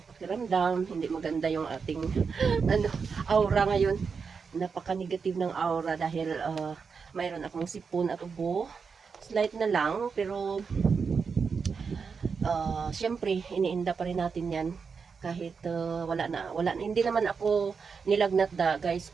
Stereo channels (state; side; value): quieter; left; 5.5 dB